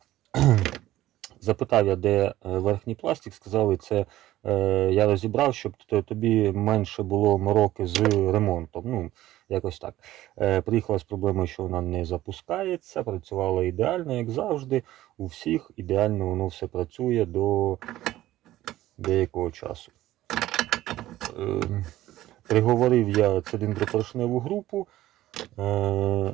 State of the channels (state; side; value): quieter; left; 15.0 dB